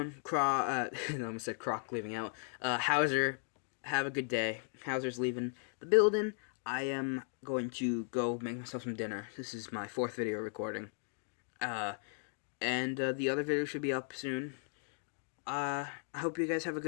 I almost said Croc leaving out. Hauser, have a good day. Hauser's leaving the building. I am going to go make myself some dinner. This is my 4th video recording. And the other video should be up soon. I hope you guys have a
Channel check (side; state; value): right; silent; 53 dB below the other